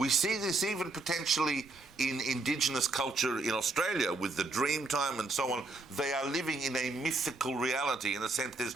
see this even potentially in indigenous culture in Australia with the dream time and so on. They are living in a mythical reality in a sense. There's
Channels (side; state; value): left; quieter; 3.3 dB